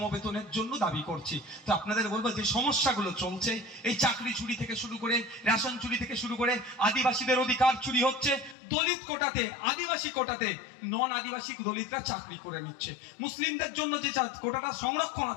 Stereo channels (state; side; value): drops out; right; at 8.6 s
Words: জন্য দাবি করছি। তো আপনাদের বলবো, যে সমস্যাগুলো চলছে, এই চাকরি চুরি থেকে শুরু করে, রেশন চুরি থেকে শুরু করে, আদিবাসীদের অধিকার চুরি হচ্ছে, দলিত কোটাতে, আদিবাসী কোটাতে নন আদিবাসী দলিতরা চাকরি করে নিচ্ছে, মুসলিমদের জন্য যে কোটাটা সংরক্ষণ